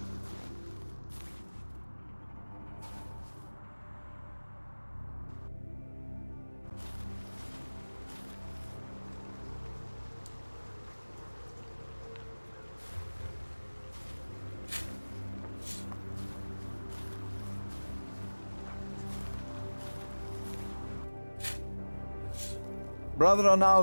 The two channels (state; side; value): inverted; both; correlation -1.00